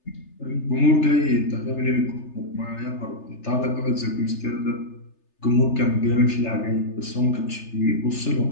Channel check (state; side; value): late; right; 3.3 ms